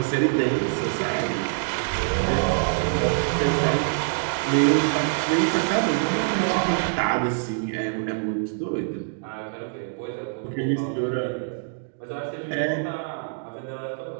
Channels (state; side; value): silent; left; 62 dB below the other